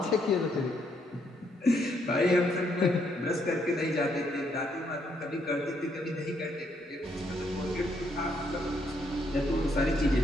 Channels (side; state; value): both; normal; correlation 0.73